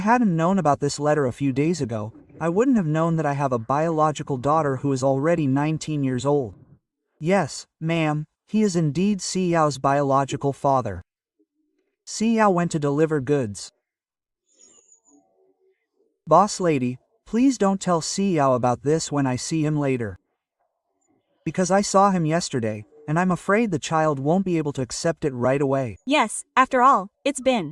known about this letter a few days ago, I wouldn't have known that I have a biological daughter who is already 19 years old. Yes, ma'am, he is indeed Xiao's biological father. Xiao went to deliver goods. Boss lady, please don't tell Xiao about this when I see him later. Because I saw him yesterday, and I'm afraid the child won't be able to accept it right away. Yes, after all, it's been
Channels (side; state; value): both; identical; correlation 1.00